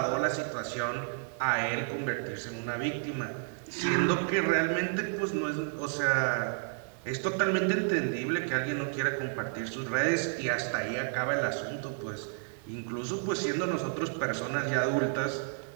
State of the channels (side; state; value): left; silent; 57 dB below the other